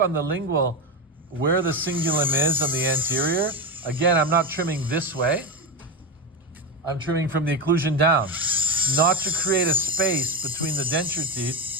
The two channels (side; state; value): both; normal; correlation 0.16